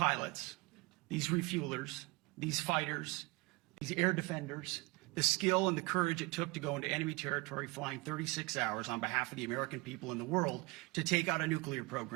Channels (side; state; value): left; quieter; 25.3 dB